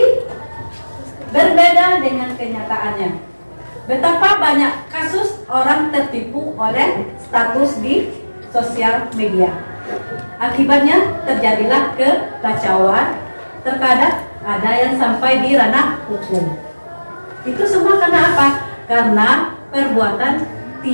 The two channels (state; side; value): inverted; both; correlation -1.00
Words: berbeda dengan kenyataannya. Betapa banyak kasus orang tertipu oleh status di sosial media. Akibatnya terjadilah kekacauan, terkadang ada yang sampai di ranah hukum. Itu semua karena apa? Karena perbuatan